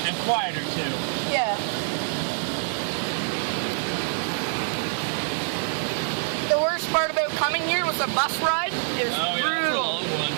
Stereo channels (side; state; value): left; silent; digital silence